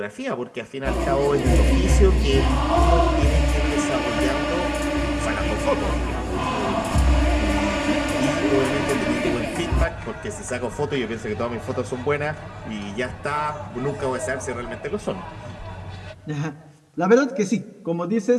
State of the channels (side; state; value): both; identical; correlation 1.00